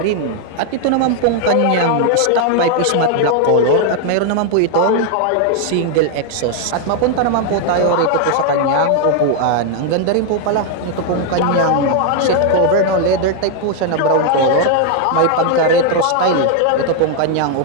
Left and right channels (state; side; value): different; both; correlation 0.00